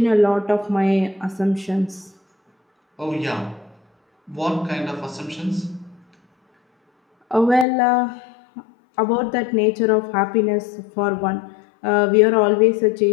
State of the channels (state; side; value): drops out; right; at 7.7 s